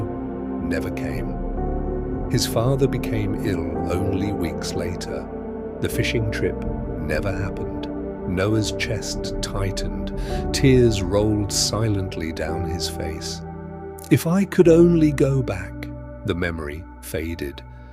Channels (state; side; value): identical; both; correlation 1.00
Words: never came. His father became ill only weeks later. The fishing trip never happened. Noah's chest tightened. Tears rolled silently down his face. "If I could only go back." The memory faded.